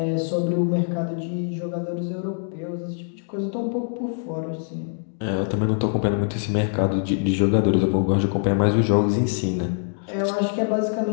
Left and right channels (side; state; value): right; silent; digital silence